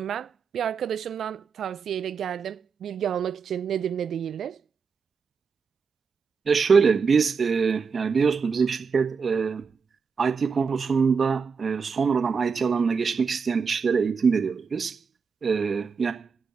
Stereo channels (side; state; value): left; quieter; 5.6 dB